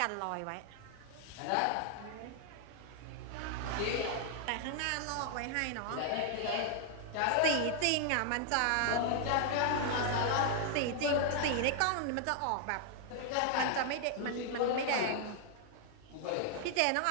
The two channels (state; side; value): different; both; correlation 0.00